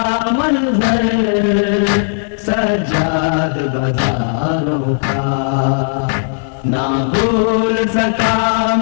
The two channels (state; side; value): silent; right; digital silence